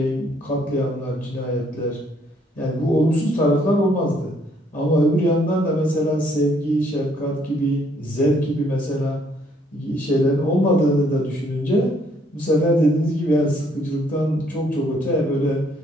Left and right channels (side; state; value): both; normal; correlation 0.67